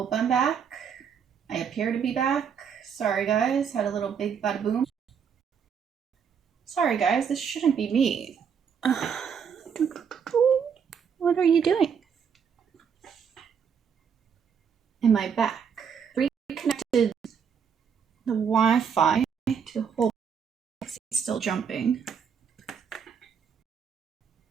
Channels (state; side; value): quieter; left; 7.0 dB